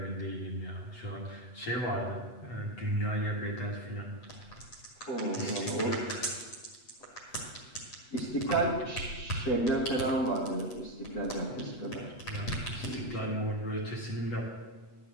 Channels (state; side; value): late; right; 8.1 ms